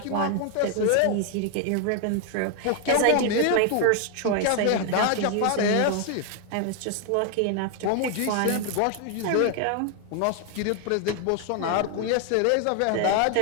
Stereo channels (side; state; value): both; different; correlation 0.00